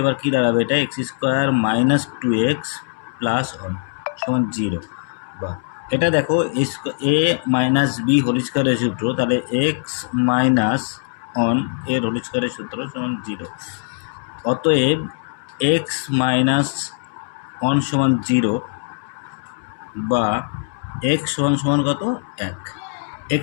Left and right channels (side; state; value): right; silent; 65 dB below the other